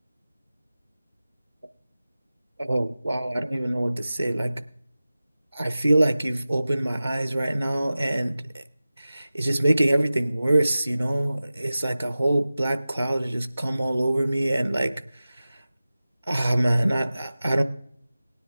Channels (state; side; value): inverted; both; correlation -0.96